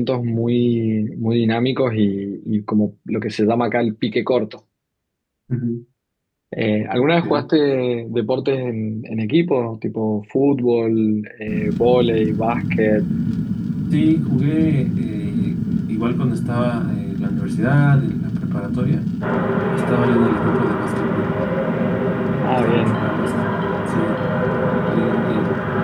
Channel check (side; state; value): both; identical; correlation 1.00